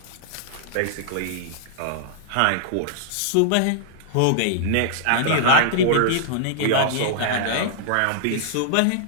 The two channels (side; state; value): both; different; correlation -0.01